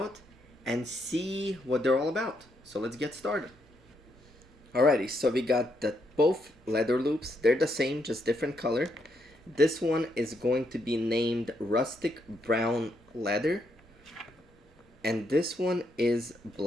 and see what they're all about. So let's get started. Alrighty, so we got both leather loops. They're the same, just different color. This one is going to be named Rustic Brown Leather, and this one is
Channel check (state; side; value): normal; both; correlation 0.77